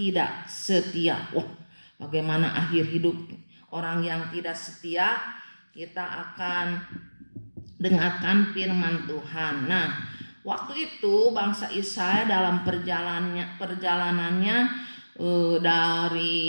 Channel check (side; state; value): both; inverted; correlation -1.00